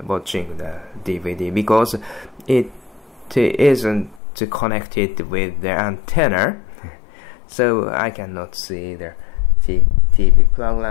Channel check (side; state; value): right; drops out; at 4.2 s